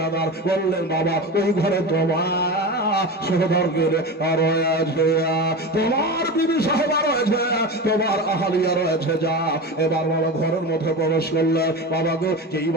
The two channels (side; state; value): both; normal; correlation 0.26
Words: বললেন বাবা ওই ঘরে তোমার সহদরকে আর আছে, তোমার বিবি সাহেবা রয়েছে, তোমার আহালিয়া রয়েছে, যা। এবার বাবা ঘরের মধ্যে প্রবেশ করলে বাবা গো, যেই